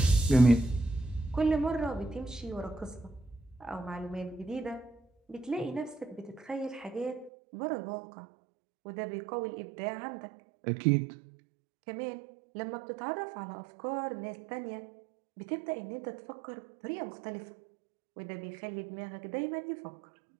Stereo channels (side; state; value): left; drops out; at 7.3 s